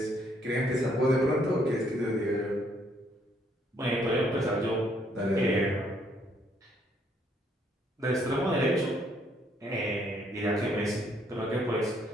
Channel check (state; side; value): normal; both; correlation 0.68